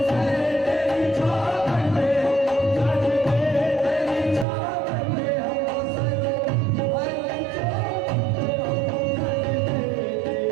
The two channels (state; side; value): drops out; left; at 4.5 s